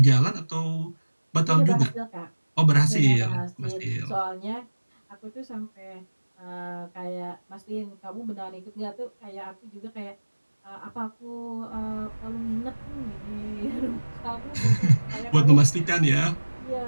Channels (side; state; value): both; inverted; correlation -1.00